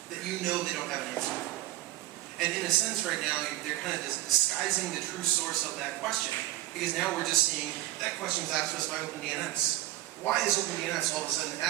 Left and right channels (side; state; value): left; quieter; 16.5 dB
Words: that you know they don't have an answer for. And in a sense, right now, they're kind of disguising the true source of that question, because now we're just seeing that question was asked to us by OpenDNS. Why is OpenDNS all of a sudden